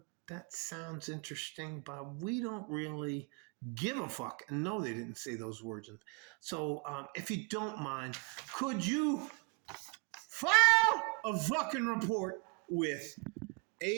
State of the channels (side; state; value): left; quieter; 33.4 dB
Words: sounds interesting, but we don't really give a fuck. And no, they didn't say those words. And so if you don't mind, could you file a fucking report with